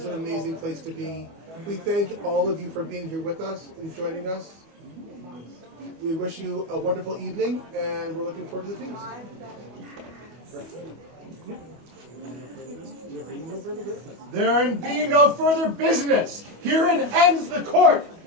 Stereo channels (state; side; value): late; left; 25 ms